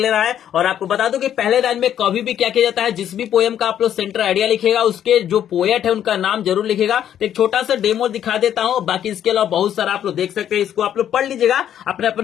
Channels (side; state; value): right; quieter; 10.2 dB